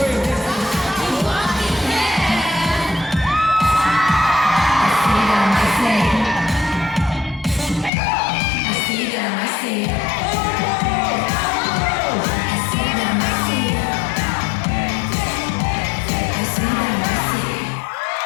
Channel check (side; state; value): right; drops out; at 7.9 s